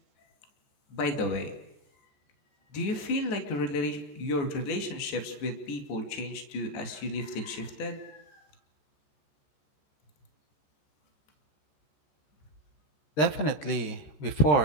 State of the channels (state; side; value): late; right; 13 ms